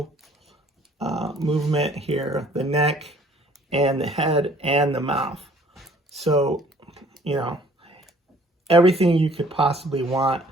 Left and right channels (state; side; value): normal; both; correlation 0.56